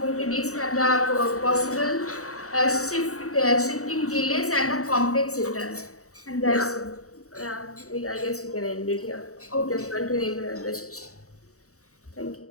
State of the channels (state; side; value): late; right; 0.65 ms